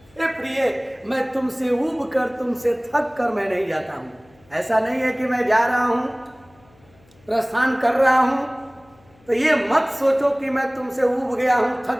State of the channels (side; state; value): left; noise; hum, 30 dB below the sound